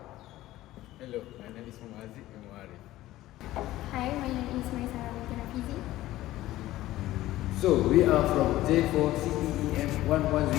Hello, my name is MEM160. Hi, my name is MAISARAH with HAFIZI. So, we are from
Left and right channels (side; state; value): right; quieter; 15.7 dB